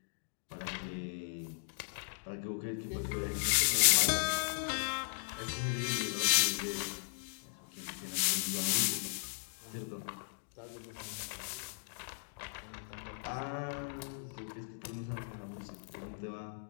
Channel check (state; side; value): silent; right; digital silence